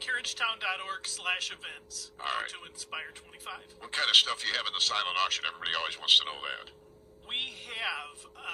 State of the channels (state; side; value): identical; both; correlation 1.00